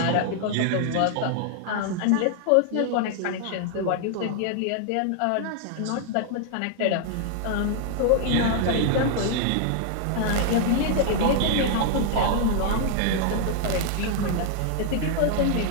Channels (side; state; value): both; different; correlation -0.01